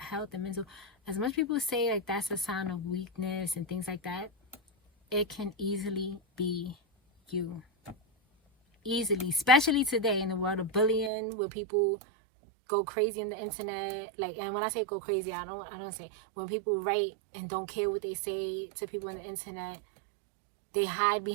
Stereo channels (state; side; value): drops out; left; at 11.1 s